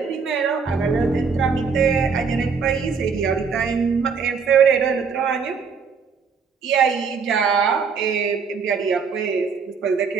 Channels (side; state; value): left; quieter; 5.7 dB